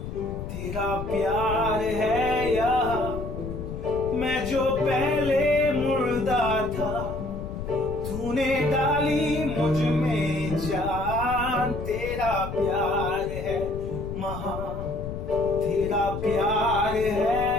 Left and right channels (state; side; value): noise; left; rumble, 8 dB below the sound